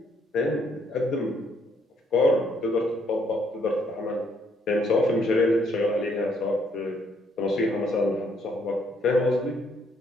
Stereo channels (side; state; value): both; normal; correlation 0.70